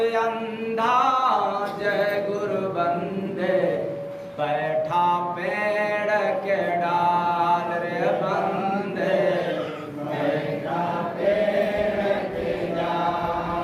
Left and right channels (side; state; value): both; identical; correlation 1.00